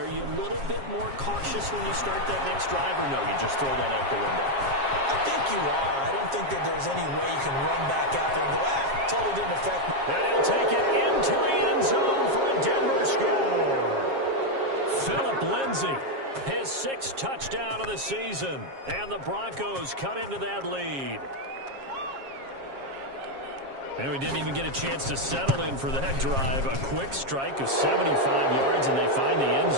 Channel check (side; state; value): left; late; 7.4 ms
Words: you a little bit more cautious when you start that next drive, or no, you just throw that out the window? I think you are. I don't think that there's any way you can run back out there and go, totally didn't affect me. And he'll take it into the end zone for a Denver score. Phillip Lindsay, his 6th touchdown of the season. And the Broncos cut into that lead. And we didn't even get a chance to settle in for that drive. A quick strike of 75 yards, and they find the end